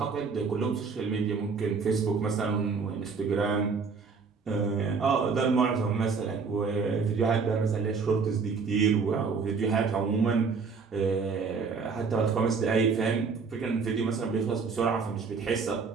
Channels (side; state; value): left; quieter; 5.1 dB